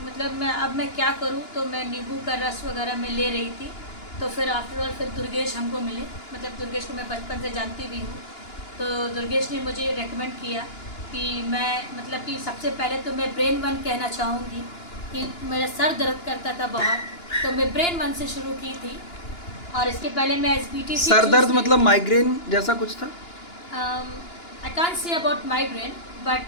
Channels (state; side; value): late; right; 2.9 ms